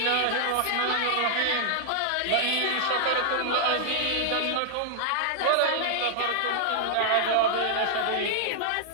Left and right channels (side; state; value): both; different; correlation -0.01